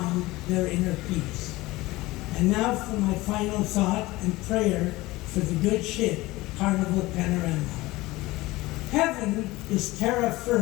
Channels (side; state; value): right; quieter; 19.7 dB